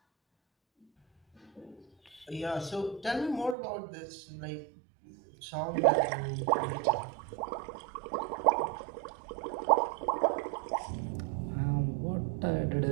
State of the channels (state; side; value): drops out; left; at 3.6 s